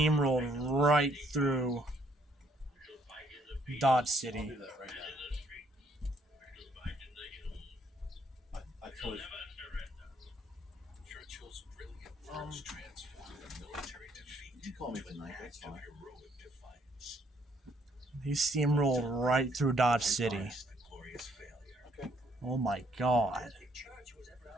right through Dodge City. I'll do that right now. I totally. Churchill's brilliant words transformed a military defeat You can call me into an tonight, act that's of fine. heroic defiance. He steamrolled right through Dodge City. Minus the glorious failure. Okay. Oh my god. The church was ever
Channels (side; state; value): both; normal; correlation 0.68